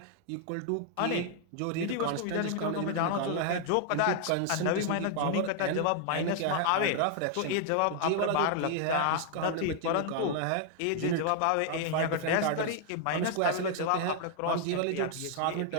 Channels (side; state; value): both; different; correlation 0.00